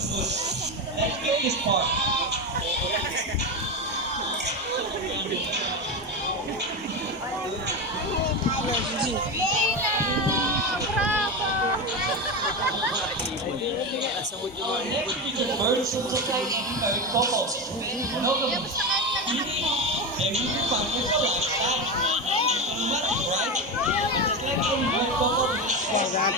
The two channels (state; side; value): normal; both; correlation 0.17